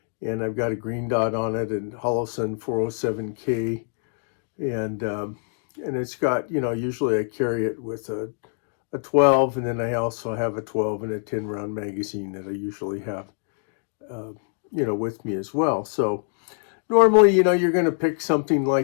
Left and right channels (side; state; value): right; silent; 62 dB below the other